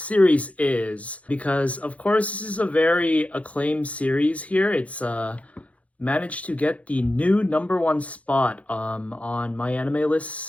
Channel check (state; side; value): late; right; 0.065 ms